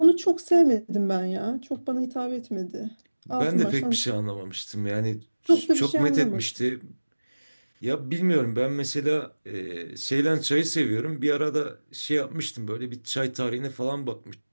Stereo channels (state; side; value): inverted; both; correlation -1.00